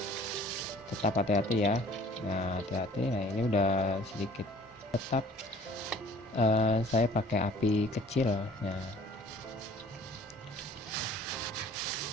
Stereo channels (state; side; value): normal; both; correlation 0.52